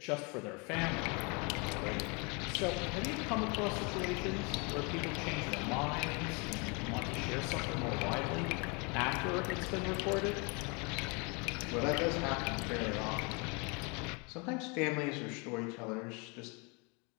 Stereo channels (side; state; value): right; quieter; 31.4 dB